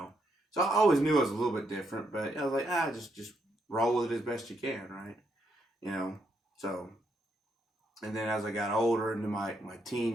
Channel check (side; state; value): both; normal; correlation 0.77